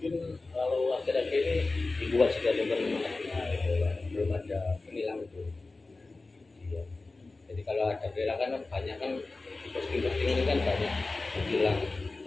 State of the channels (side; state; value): right; quieter; 3.4 dB